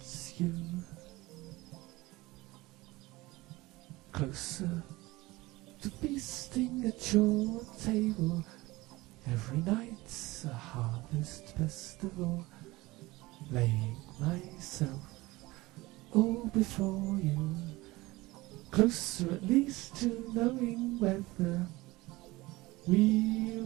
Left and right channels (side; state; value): left; quieter; 20.5 dB